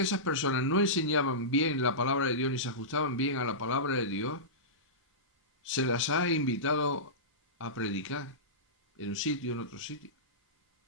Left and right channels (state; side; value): normal; both; correlation -0.18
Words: esas personas no enseñaban bien la palabra de Dios ni se ajustaban bien a la palabra de Dios, se las ha invitado a predicar en un sitio, en otro sitio.